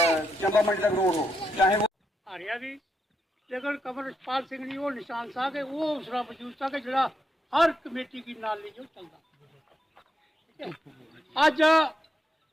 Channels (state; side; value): normal; both; correlation 0.82